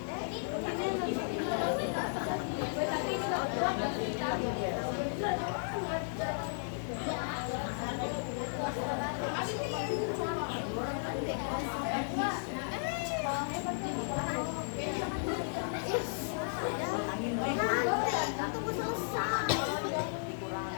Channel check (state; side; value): silent; right; digital silence